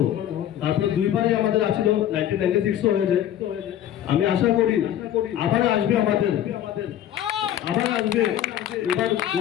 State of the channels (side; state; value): right; quieter; 11.2 dB